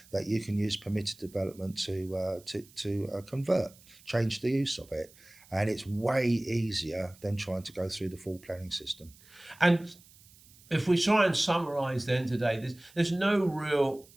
that you can use permitted development to convert, change the use of it. And it's way easier than trying to go through the full planning system. And if we try and summarise then today, there's no real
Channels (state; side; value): noise; right; hiss, 25 dB below the sound